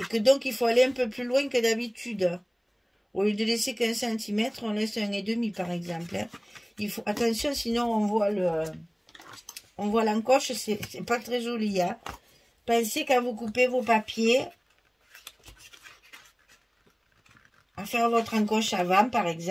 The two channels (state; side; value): identical; both; correlation 1.00